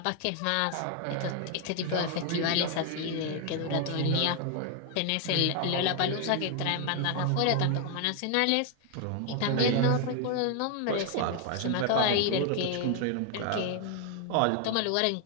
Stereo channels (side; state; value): both; different; correlation 0.01